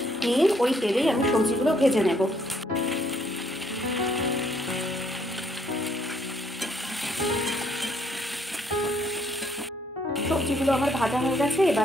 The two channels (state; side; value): normal; both; correlation 0.68